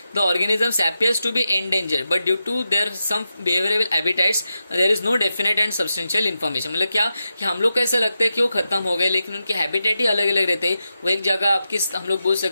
the organisms appears to be endangered but due to their some behavioural habitats there is no definite and substantial information. मतलब क्या कि हम लोग को ऐसा लगता है कि वो खत्म हो गए, लेकिन उनके हैबिटेट ही अलग अलग रहते हैं। वो एक जगह आपकी हम लोग बोल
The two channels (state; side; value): inverted; both; correlation -0.89